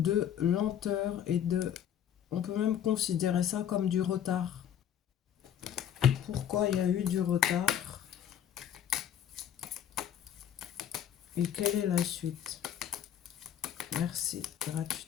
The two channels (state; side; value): quieter; right; 9.7 dB